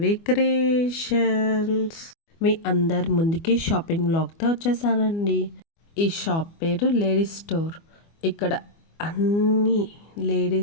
creations. మీ అందరి ముందుకి షాపింగ్ బ్లాగ్తో వచ్చేసానండి. ఈ షాప్ పేరు లేడీస్ స్టోర్. ఇక్కడ అన్ని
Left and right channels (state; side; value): late; right; 24 ms